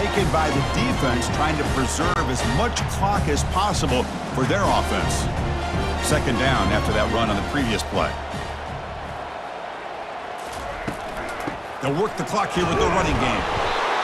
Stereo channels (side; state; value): both; identical; correlation 1.00